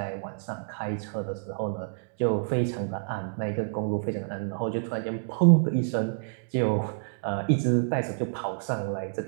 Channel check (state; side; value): silent; left; digital silence